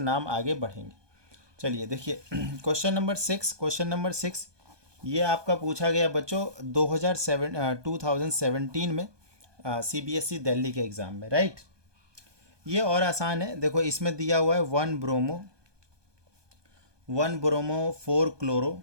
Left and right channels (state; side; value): late; left; 1.2 ms